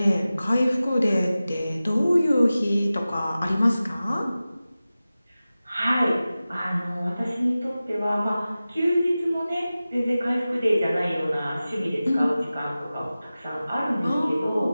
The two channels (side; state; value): both; inverted; correlation -0.96